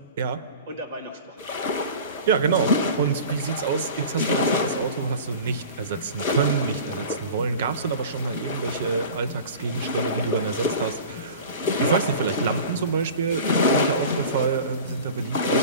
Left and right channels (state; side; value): inverted; both; correlation -0.37